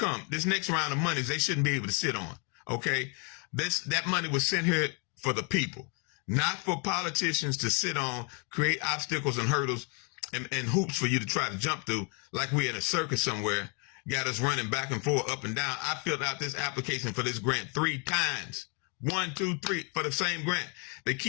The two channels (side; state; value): right; quieter; 35.7 dB